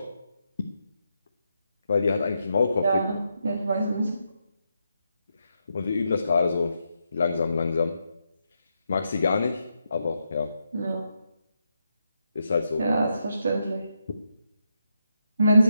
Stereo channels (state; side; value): inverted; both; correlation -0.83